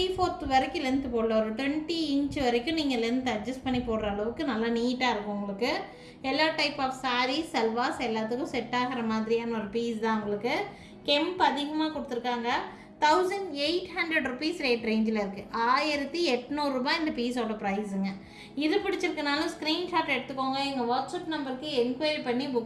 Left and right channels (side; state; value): both; identical; correlation 1.00